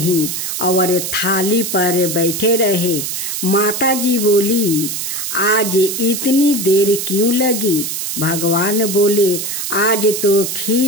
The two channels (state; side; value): noise; right; hiss, 3 dB below the sound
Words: और थाली पर बैठे रहे। माताजी बोली, आज इतनी देर क्यों लगी। भगवान बोले, आज तो